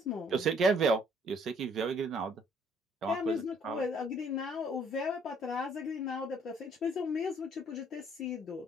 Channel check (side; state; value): both; normal; correlation 0.62